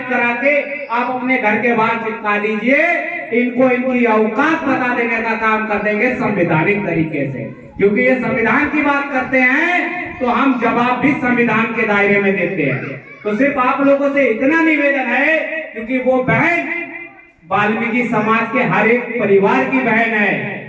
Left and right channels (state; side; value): identical; both; correlation 1.00